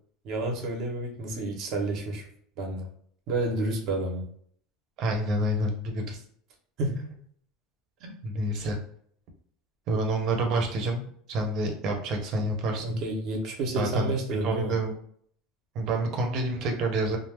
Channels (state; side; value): normal; both; correlation 0.37